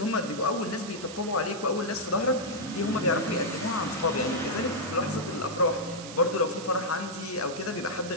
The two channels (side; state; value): right; noise; hiss, 13 dB below the sound